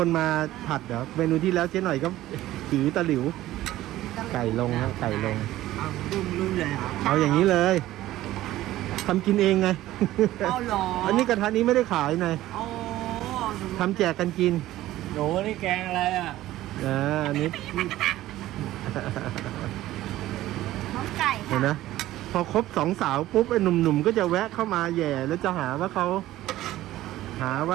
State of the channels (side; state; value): left; quieter; 15.1 dB